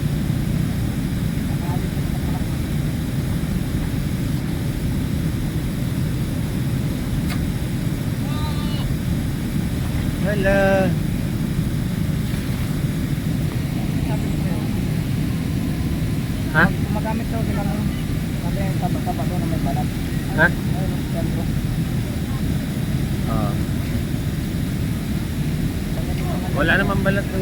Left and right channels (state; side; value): identical; both; correlation 1.00